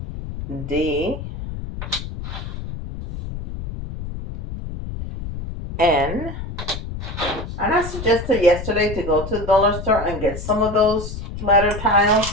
D. N. And I suggested yesterday to go to the dollar store and get some of those letter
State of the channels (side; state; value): left; noise; rumble, 8 dB below the sound